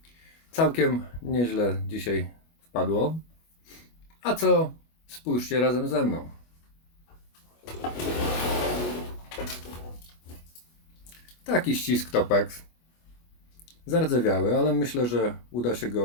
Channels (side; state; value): right; late; 25 ms